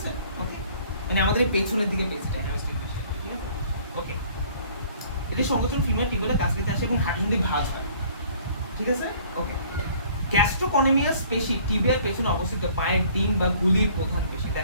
ওকে, মানে আমাদের এই পেছনের দিকে পেশিটা হ্যামস্ট্রিং পেশি, ঠিক আছে? ওকে, এটা সংকোচন ফিমার টিবিয়ালের কাছ থেকে আসে এবং হাঁটুসন্ধি ভাঁজ হয়, ঠিক আছে? ওকে, গ্যাস্ট্রোকনিমিয়াস পেশি টিবিয়ার পেছনে অবস্থিত পায়ের ডিম বা গুলির প্রধান পেশি।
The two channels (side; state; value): both; inverted; correlation -0.55